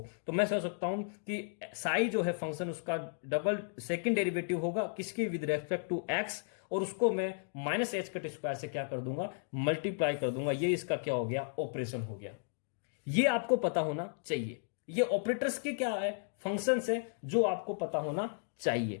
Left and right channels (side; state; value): right; silent; digital silence